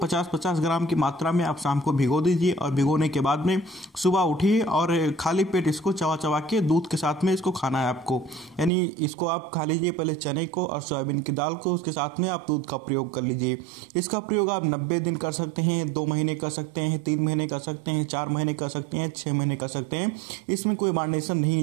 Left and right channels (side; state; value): left; drops out; at 8.7 s